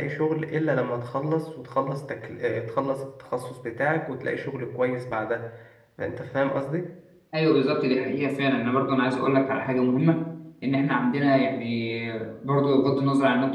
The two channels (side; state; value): both; identical; correlation 1.00